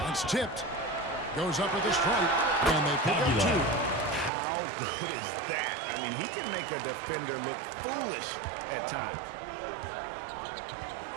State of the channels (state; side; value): drops out; left; at 4.3 s